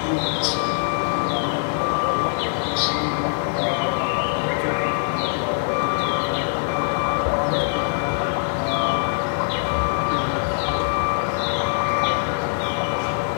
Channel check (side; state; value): right; silent; digital silence